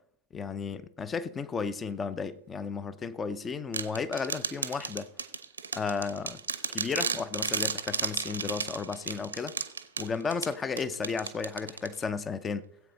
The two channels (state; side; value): normal; both; correlation 0.23